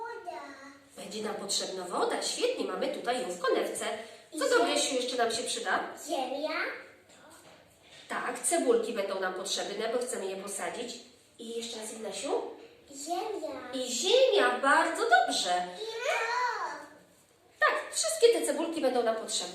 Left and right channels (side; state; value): both; identical; correlation 1.00